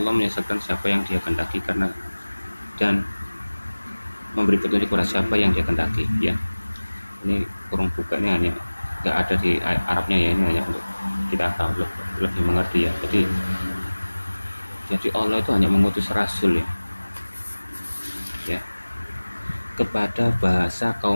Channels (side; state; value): both; inverted; correlation -1.00